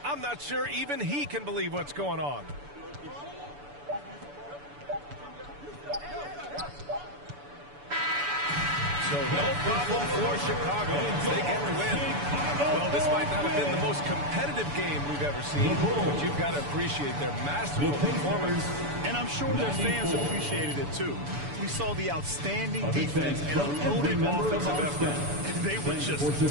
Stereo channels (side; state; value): left; late; 6.9 ms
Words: I'm not sure even he can believe what's going on. So no problem for Chicago. They get the win. Well, this might not have been the most competitive game we've ever seen, but you've got to appreciate their masterful performance. And I'm sure their fans appreciated it, too. We saw the outstanding defense and a loaded offensive effort. And they were just